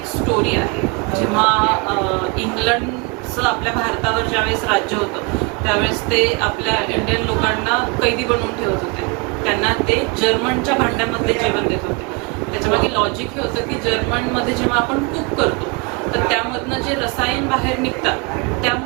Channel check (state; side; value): quieter; left; 29.2 dB